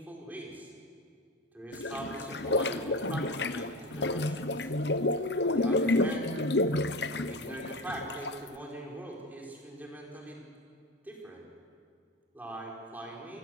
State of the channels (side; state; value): both; normal; correlation 0.24